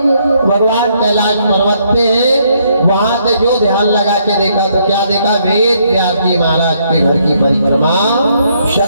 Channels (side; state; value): both; inverted; correlation -0.72